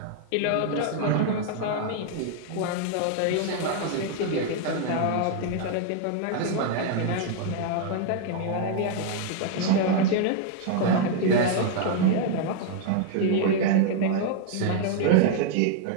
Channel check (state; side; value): different; both; correlation 0.00